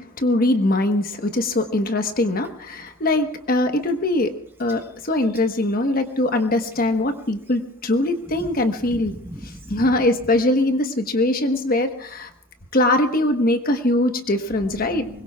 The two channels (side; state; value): both; normal; correlation 0.45